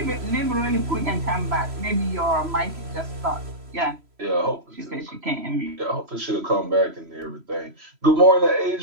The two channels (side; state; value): left; late; 3.0 ms